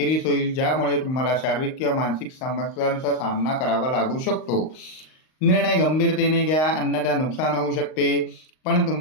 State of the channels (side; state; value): right; late; 38 ms